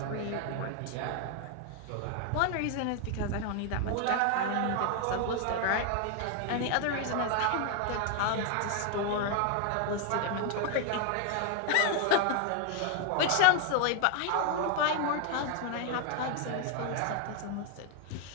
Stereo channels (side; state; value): both; different; correlation 0.00